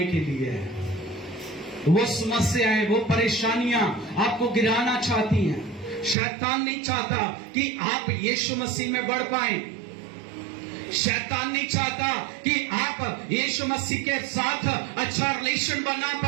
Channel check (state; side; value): drops out; left; at 6.2 s